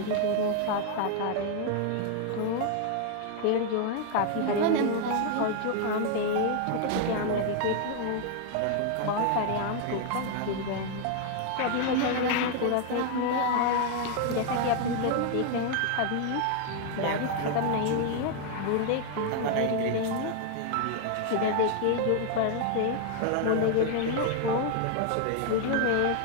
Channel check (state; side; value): different; both; correlation 0.00